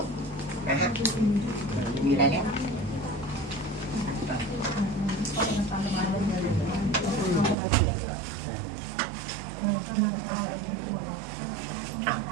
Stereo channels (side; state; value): left; drops out; at 7.6 s